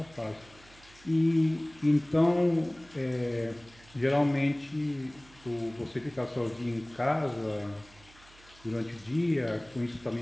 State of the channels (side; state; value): right; noise; hum, 25 dB below the sound